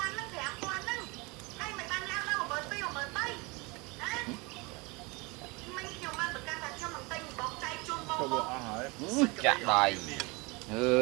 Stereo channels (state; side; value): quieter; left; 26.6 dB